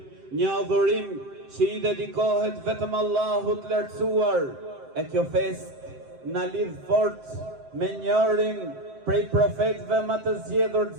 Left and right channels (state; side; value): late; left; 7.7 ms